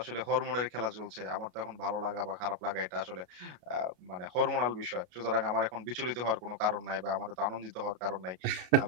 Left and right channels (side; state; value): left; late; 33 ms